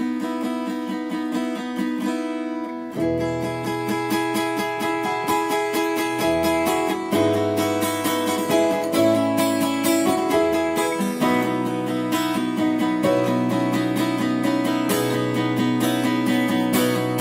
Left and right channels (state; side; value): identical; both; correlation 1.00